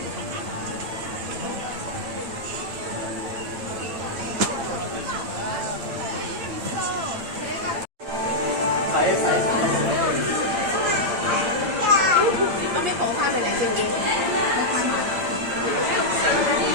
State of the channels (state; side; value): late; left; 8.7 ms